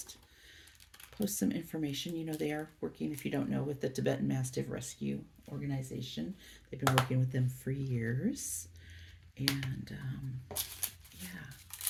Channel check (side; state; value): both; identical; correlation 1.00